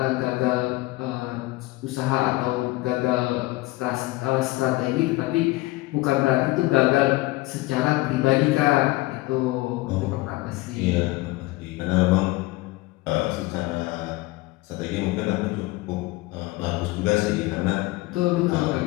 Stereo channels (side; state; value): right; quieter; 20.5 dB